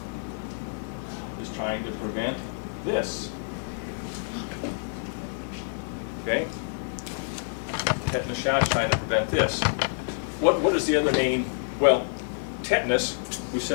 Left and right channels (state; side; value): silent; right; 60 dB below the other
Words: is trying to prevent this. Okay? Tetanus shot is trying to prevent this. What is the other name? Well, tetanus, we